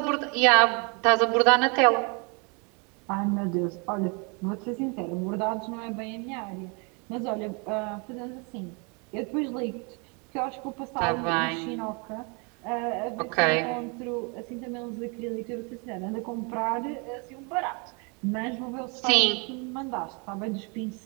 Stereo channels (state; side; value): quieter; left; 32.8 dB